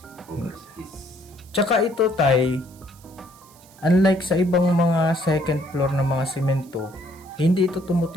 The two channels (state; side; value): noise; right; hiss, 26 dB below the sound